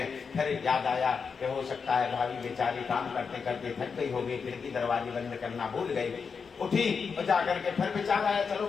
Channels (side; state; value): right; quieter; 5.6 dB